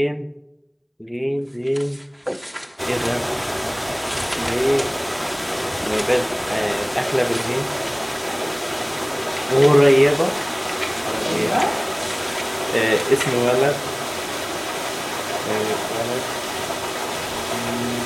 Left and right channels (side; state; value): both; identical; correlation 1.00